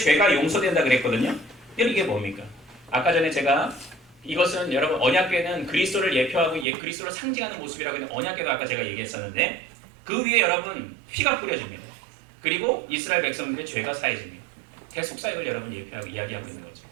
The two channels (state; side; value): drops out; left; at 6.7 s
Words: 용서된다 그랬거든요. 이게 뭡니까? 아까 전에 제가 이것은 여러분 언약궤는 그리스도를 예표하고 그리스도를 상징하는 모습이라고 했는데 언약궤도 아까 제가 얘기했었는데 그 위에 여러분 피가 뿌려집니다. 그리고 이스라엘 백성들의 죄가 사해집니다. 대속사역을 여러분 예표하고 이야기하고 있는 거죠.